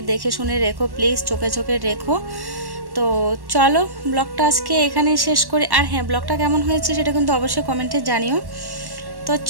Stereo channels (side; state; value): left; late; 1.1 ms